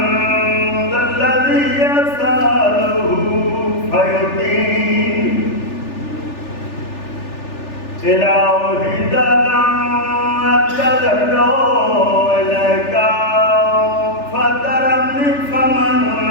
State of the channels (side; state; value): right; late; 3.4 ms